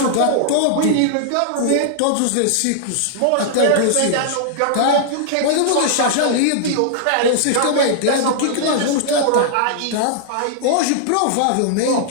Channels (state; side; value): different; both; correlation -0.01